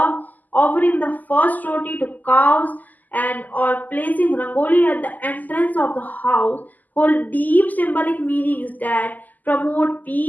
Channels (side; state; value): right; late; 0.082 ms